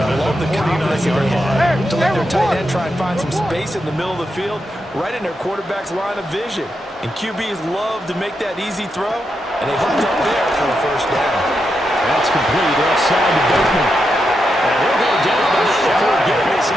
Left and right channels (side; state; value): both; normal; correlation 0.85